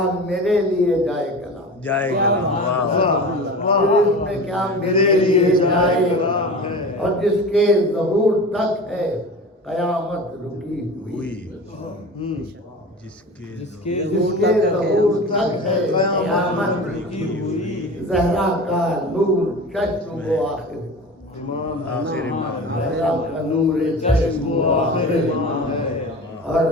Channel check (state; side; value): normal; both; correlation 0.33